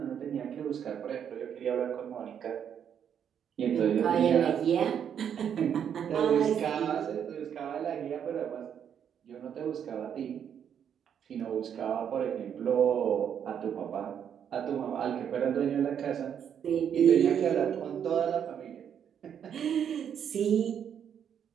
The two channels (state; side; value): quieter; left; 8.5 dB